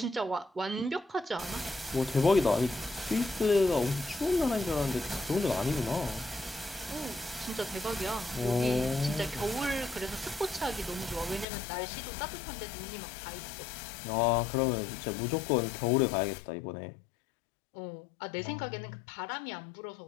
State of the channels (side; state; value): right; drops out; at 11.5 s